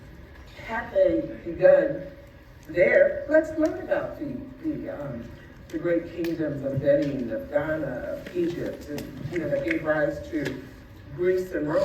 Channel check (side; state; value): both; identical; correlation 1.00